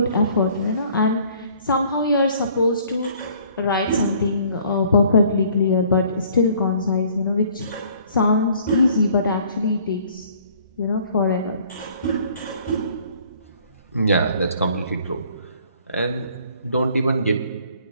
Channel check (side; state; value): both; inverted; correlation -0.57